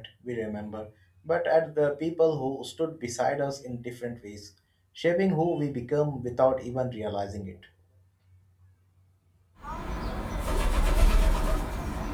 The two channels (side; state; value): both; identical; correlation 1.00